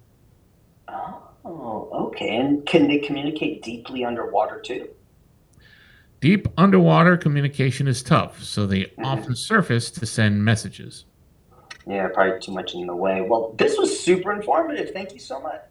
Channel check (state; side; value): identical; both; correlation 1.00